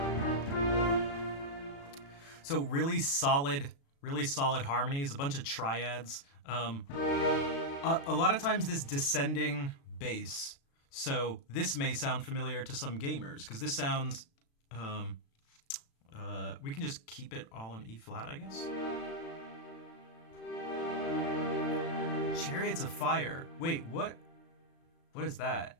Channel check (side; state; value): right; late; 36 ms